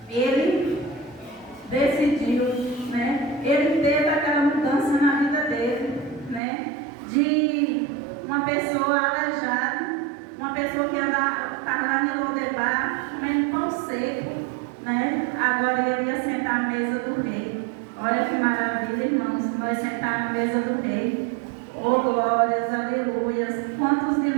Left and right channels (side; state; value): left; drops out; at 6.4 s